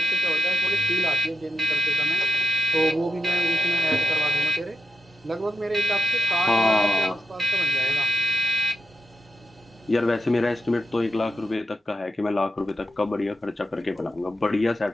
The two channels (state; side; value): normal; both; correlation 0.82